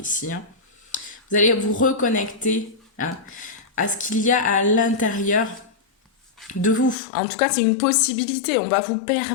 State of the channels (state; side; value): drops out; right; at 7.0 s